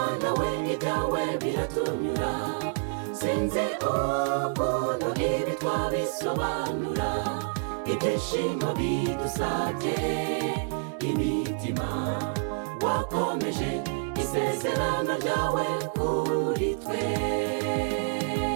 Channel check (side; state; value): left; silent; 59 dB below the other